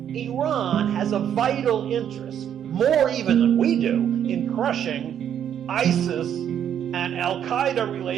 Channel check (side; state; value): left; quieter; 9.4 dB